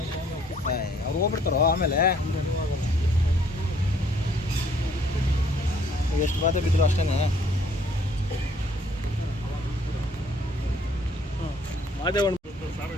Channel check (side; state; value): both; normal; correlation 0.62